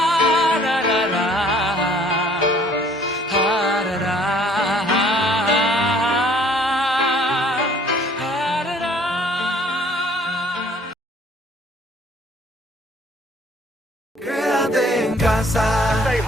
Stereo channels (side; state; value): both; normal; correlation 0.57